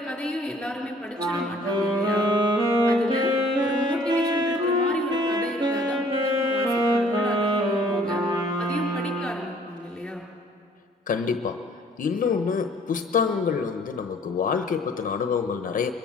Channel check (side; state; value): both; normal; correlation 0.56